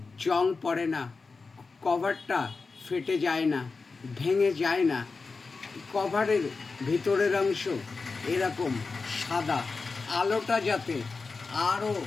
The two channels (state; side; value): quieter; right; 4.3 dB